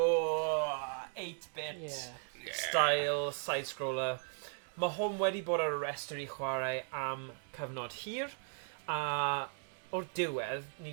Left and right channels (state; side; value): silent; left; 53 dB below the other